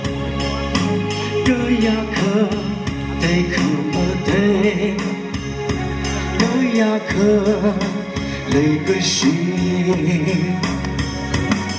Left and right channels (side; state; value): both; identical; correlation 1.00